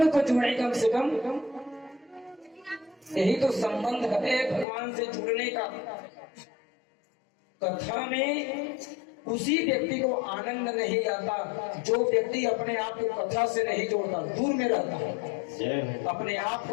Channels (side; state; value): right; drops out; at 4.7 s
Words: को जोड़े कम से कम। यही तो संबंध है भगवान से जुड़ने का। कथा में उसी व्यक्ति को आनंद नहीं आता जो व्यक्ति अपने आप को कथा से नहीं जोड़ता, दूर में रहता है। अपने आप